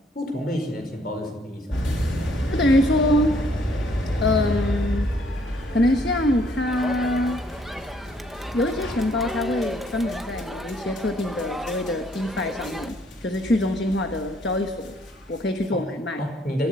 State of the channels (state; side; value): normal; both; correlation 0.66